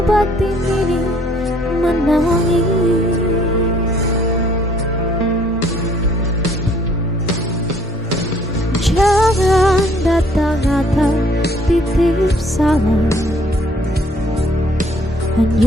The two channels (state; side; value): normal; both; correlation 0.61